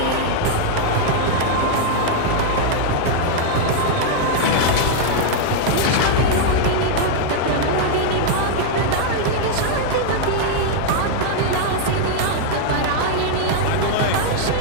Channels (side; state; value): both; different; correlation 0.00